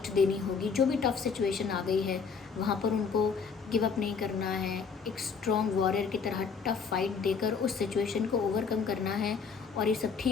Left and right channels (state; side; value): quieter; right; 5.7 dB